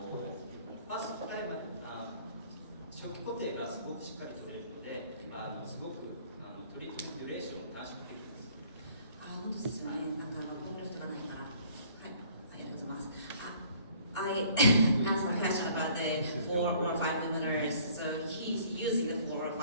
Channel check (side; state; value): both; inverted; correlation -0.56